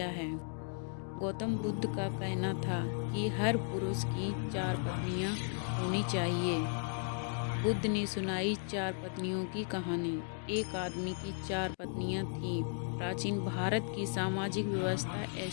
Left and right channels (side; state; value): right; silent; 54 dB below the other